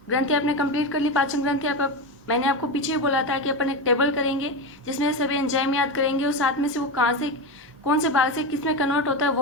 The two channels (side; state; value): both; normal; correlation 0.17